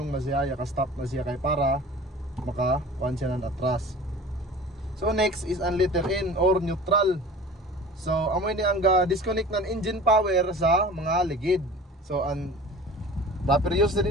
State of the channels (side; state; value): both; normal; correlation 0.41